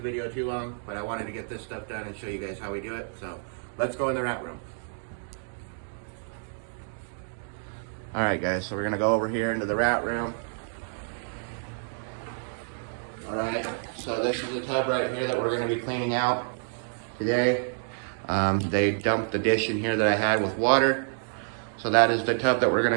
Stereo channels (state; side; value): silent; left; digital silence